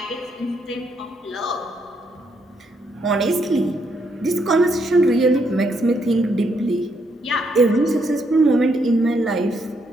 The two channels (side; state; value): both; normal; correlation 0.75